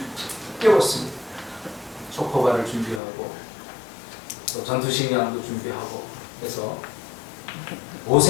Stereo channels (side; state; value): right; drops out; at 3.0 s